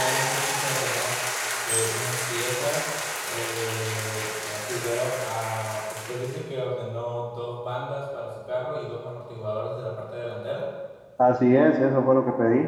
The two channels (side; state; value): both; identical; correlation 1.00